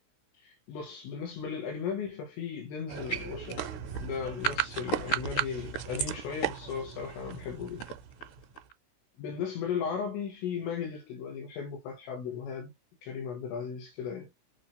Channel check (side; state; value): right; late; 16 ms